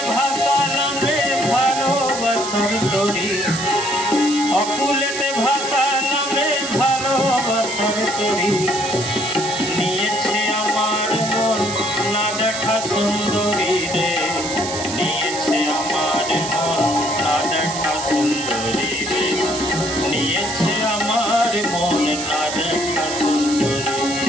ভাসালাম রে ভালোবাসার তরি, অকুলেতে ভাসালাম রে ভালোবাসার তরি। নিয়েছে আমার মন না দেখা সুন্দরী রে, নিয়েছে আমার মন না দেখা সুন্দরী রে, নিয়েছে আমার মন না দেখা সুন্দরী।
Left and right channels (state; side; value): noise; right; hiss, 7 dB below the sound